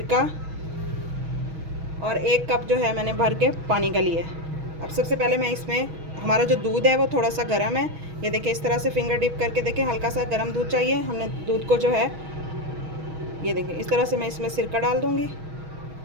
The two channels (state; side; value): late; left; 6.3 ms